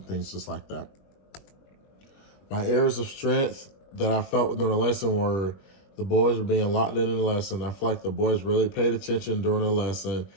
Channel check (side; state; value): right; late; 21 ms